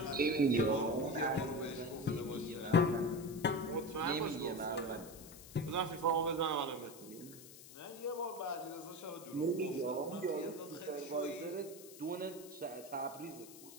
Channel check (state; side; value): noise; left; hiss, 17 dB below the sound